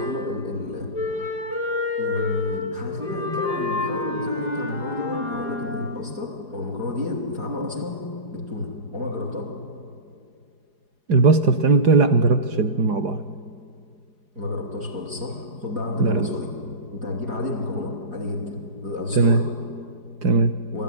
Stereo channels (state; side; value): late; left; 4.9 ms